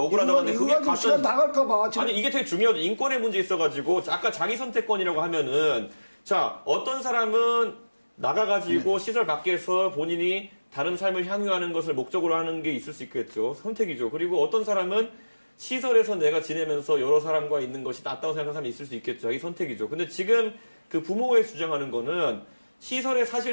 억울하다는데 이거 그게 가지고 시간 가짜 나갈까봐 지금 아니 이게 되게 중요하죠. 인권의 문제 있어가지고 아까 자기 선택권이라고 하면은 자 어떤 사람은 나가가지고 시설 밖에서 본인이 다른 삶을 향유하는 것을 목적으로 하는 게 있을 수 있겠죠. 선택이죠. 그리고 어떤 사람은 시설에서 내가 지내면서 여러 사람과 있는 것이 낫다고 생각하는 사람이 있을 수 있겠죠. 자기 선택이죠. 근데 지금 그 부모가 주장하는 거는 시설의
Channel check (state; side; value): inverted; both; correlation -1.00